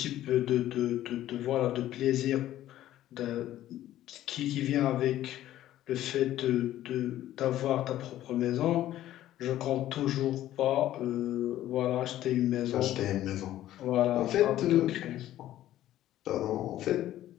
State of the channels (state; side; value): quieter; right; 13.4 dB